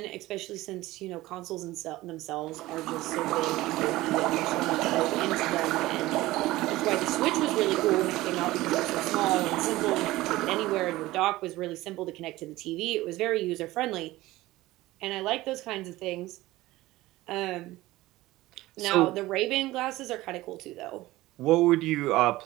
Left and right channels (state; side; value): quieter; left; 17.8 dB